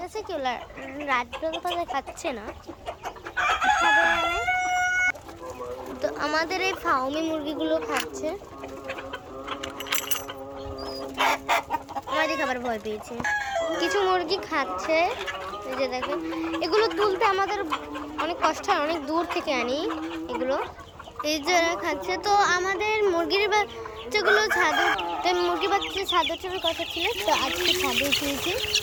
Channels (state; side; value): identical; both; correlation 1.00